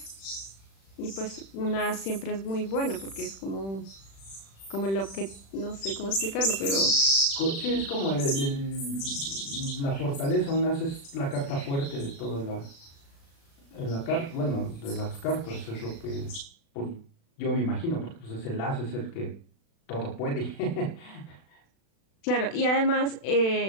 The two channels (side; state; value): right; late; 36 ms